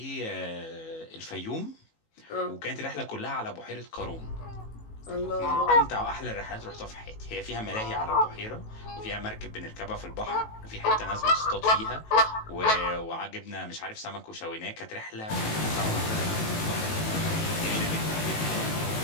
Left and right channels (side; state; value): right; late; 18 ms